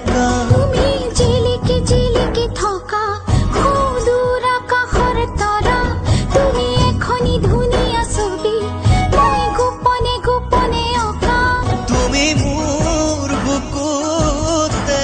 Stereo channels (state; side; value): identical; both; correlation 1.00